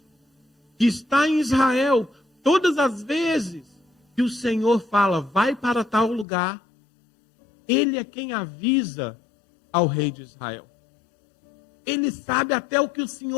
que está em Israel. Todas as vezes que o Senhor fala, vai para tal lugar, ele é quem avisa ao rei de Israel. Ele sabe até o que o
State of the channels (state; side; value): drops out; right; at 6.2 s